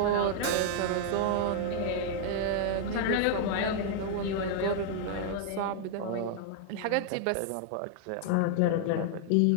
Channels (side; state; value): both; different; correlation 0.00